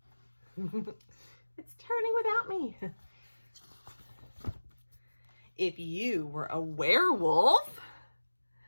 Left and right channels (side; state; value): both; inverted; correlation -1.00